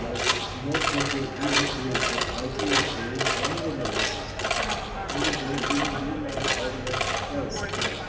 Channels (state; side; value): identical; both; correlation 1.00